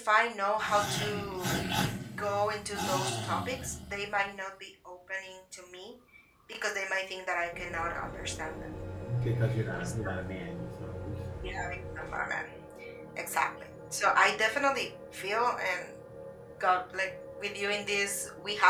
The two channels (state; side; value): identical; both; correlation 1.00